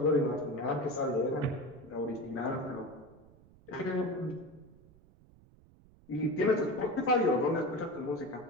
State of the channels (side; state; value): right; noise; rumble, 26 dB below the sound